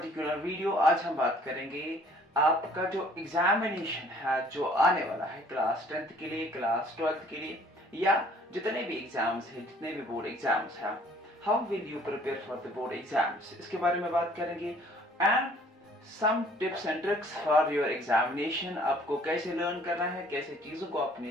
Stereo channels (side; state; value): both; normal; correlation 0.57